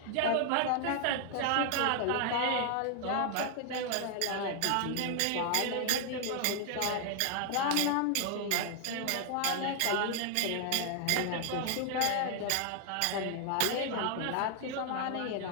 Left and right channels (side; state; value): both; different; correlation 0.00